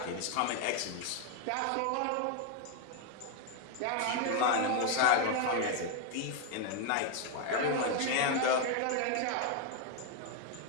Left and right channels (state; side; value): different; both; correlation 0.01